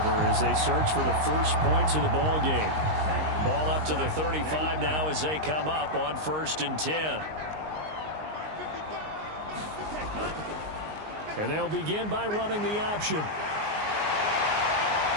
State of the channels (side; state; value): left; late; 19 ms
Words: as they search for the first points of the ball game. Ball up to the 35 now as they come up on 1st and 10. And they'll begin by running the option.